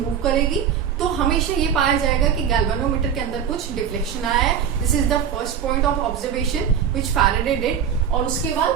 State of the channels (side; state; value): left; quieter; 8.2 dB